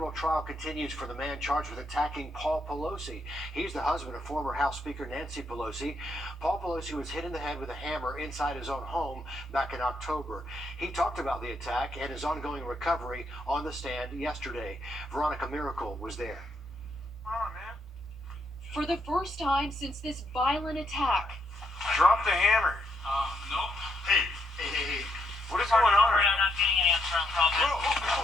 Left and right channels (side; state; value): both; normal; correlation 0.76